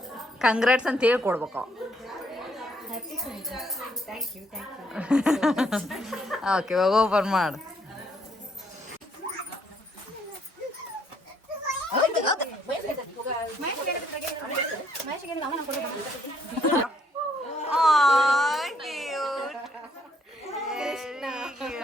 ಕಂಗ್ರಾಟ್ಸ್ ಅಂತ ಹೇಳಿ ಕೊಡ್ಬೇಕು. ಓಕೆ ಇವಾಗ ಓಪನ್ ಮಾಡು.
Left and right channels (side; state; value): both; normal; correlation 0.69